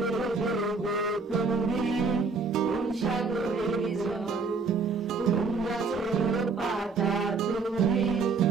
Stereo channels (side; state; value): left; quieter; 4.4 dB